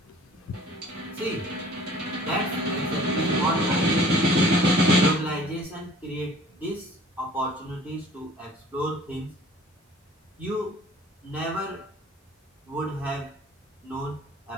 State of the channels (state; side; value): normal; both; correlation 0.50